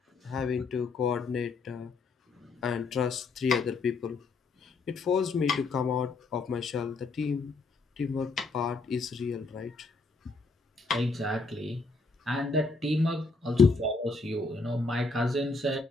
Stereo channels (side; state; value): right; quieter; 3.8 dB